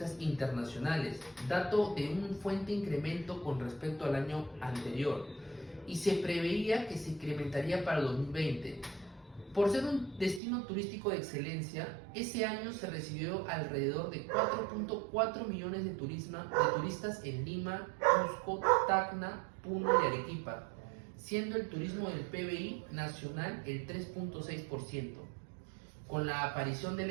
internacionales, dato de un fuerte incremento con respecto al año anterior, y se preveía que se incrementaría para el 2020. Por ser un destino turístico de excelencia, ese año se recibió alrededor de 4.4 millones de turistas en Lima, Cusco, Tacna, Puno y Arequipa, siendo el turismo del PBI nacional el 3.6%. Con la aparición de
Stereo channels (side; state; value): left; drops out; at 10.4 s